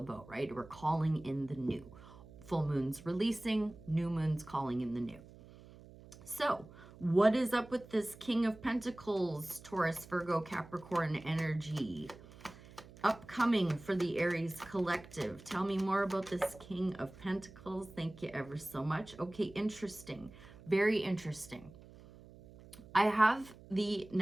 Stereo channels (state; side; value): noise; right; hum, 20 dB below the sound